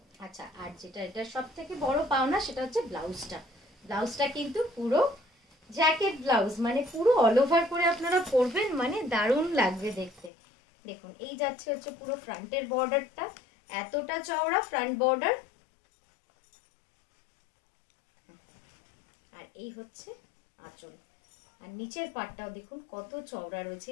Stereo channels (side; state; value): right; drops out; at 10.3 s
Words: আচ্ছা, আর যেটা এটা সব থেকে বড় পাওনা, সেটা হচ্ছে ব্লাউজটা। ব্লাউজটা কিন্তু পুরো জ্যাকেট ব্লাউজ, মানে পুরো অল ওভার করে আপনারা পরবেন, মানে দারুণ লাগবে দেখতে। দেখুন, এই যাচ্ছে হচ্ছে পুরো ফ্রন্টের বর্ডারটা, এতটা চওড়া ফ্রন্ট বর্ডার। আর এই হচ্ছে আঁচল, আর নিচের পাটটাও দেখুন কত চওড়া রয়েছে।